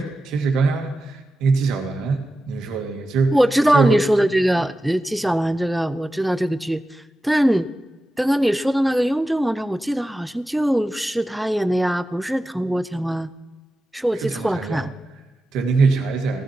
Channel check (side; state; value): both; normal; correlation 0.92